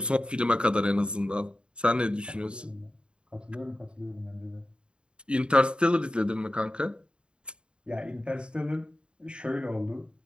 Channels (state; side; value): late; left; 0.053 ms